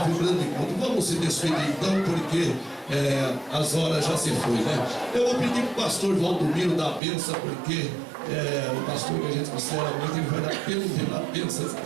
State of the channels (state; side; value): drops out; left; at 7.0 s